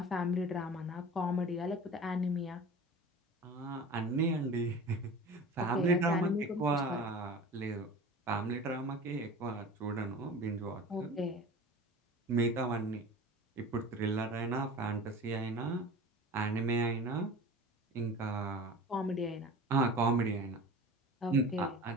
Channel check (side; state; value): both; normal; correlation 0.37